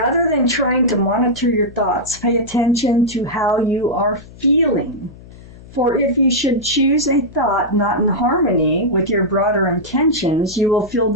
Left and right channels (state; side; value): noise; left; hum, 19 dB below the sound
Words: than trying to monitor your thoughts, pay attention to how you are feeling. For if you should choose a thought not in harmony with your broader intentions, you will feel